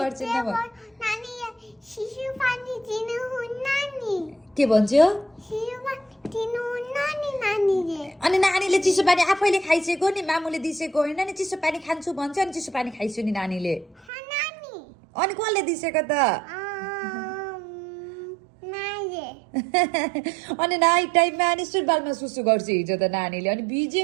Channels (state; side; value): drops out; left; at 14.1 s